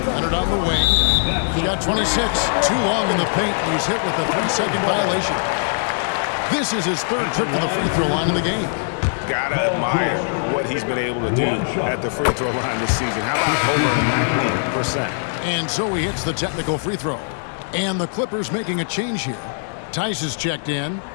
Leonard on the wing. He got 26. Too long in the paint. He's hit with a 3-second violation. This is his third trip to the free throw line in the game. Gotta admire what he's been able to do at the free throw line this season. How about over 90%? And so he hits the technical free throw. And the Clippers making a change here. Tice is checked in.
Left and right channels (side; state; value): right; silent; digital silence